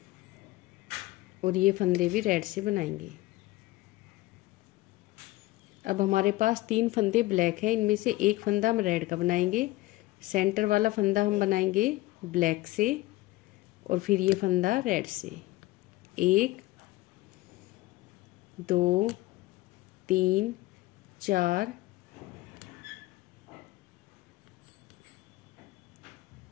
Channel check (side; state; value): right; quieter; 18.7 dB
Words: और ये फंदे भी रेड से बनाएंगे। अब हमारे पास 3 फंदे ब्लैक है, इनमें से एक फंदा हम रेड का बनाएंगे। सेंटर वाला फंदा हम बनाएंगे ब्लैक से, और फिर ये फंदा रेड से। 1 2 3 4